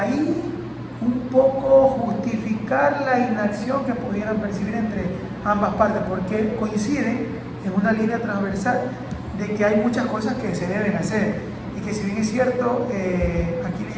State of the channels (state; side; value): identical; both; correlation 1.00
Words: un poco justificar la inacción que pudieran percibir entre ambas partes, porque coinciden en una línea transversal de que hay muchas cosas que se deben hacer y que si bien es cierto, aquí